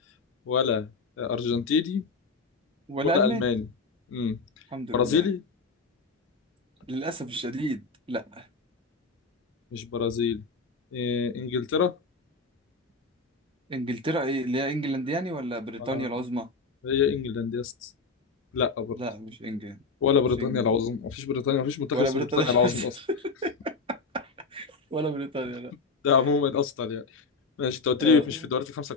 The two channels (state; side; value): quieter; right; 4.1 dB